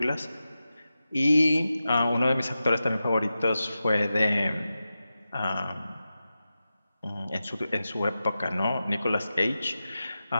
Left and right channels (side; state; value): both; inverted; correlation -0.92